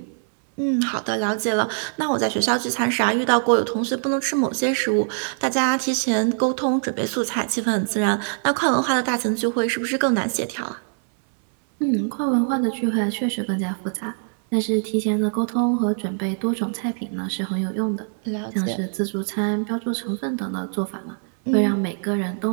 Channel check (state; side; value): silent; left; 62 dB below the other